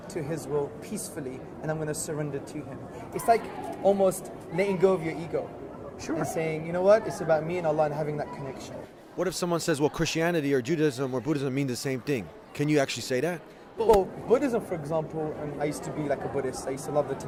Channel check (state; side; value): identical; both; correlation 1.00